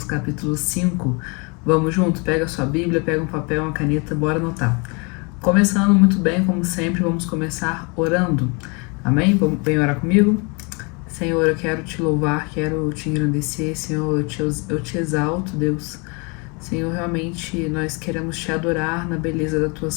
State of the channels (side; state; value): right; quieter; 31.6 dB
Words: capítulo 5. Vamos junto? Pega a sua Bíblia, pega um papel, uma caneta, bora anotar. Começando muito bem, como sempre, vamos começar orando. Amém? Vem orar comigo? Senhor, eu quero te louvar, quero te engrandecer. Senhor, eu te exalto, Deus. Senhor, realmente nós queremos te adorar na beleza da tua